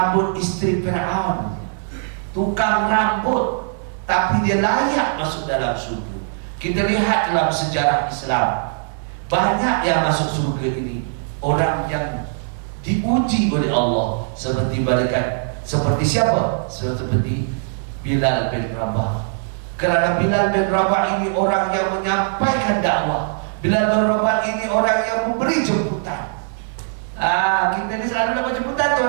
isteri Fir'aun, tukang rambut, tapi dia layak masuk dalam surga. Kita lihat dalam sejarah Islam, banyak yang masuk surga ini orang yang diuji oleh Allah, seperti malaikat. Seperti siapa? Seperti Bilal bin Rabah. Kerana Bilal bin Rabah ini orang yang menyampaikan dakwah. Bilal bin Rabah ini orang yang memberi jemputan. Kita ni selalu dapat jemputan,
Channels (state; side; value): silent; left; 65 dB below the other